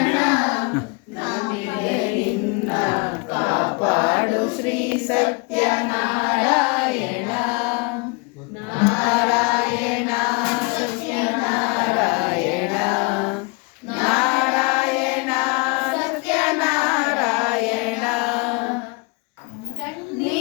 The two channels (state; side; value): quieter; right; 30.1 dB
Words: ನಾನಿದೆ ನಿನ್ನ ಕಾಪಾಡು ಶ್ರೀ ಸತ್ಯನಾರಾಯಣ. ನಾರಾಯಣ ಸತ್ಯನಾರಾಯಣ, ನಾರಾಯಣ ಸತ್ಯನಾರಾಯಣ.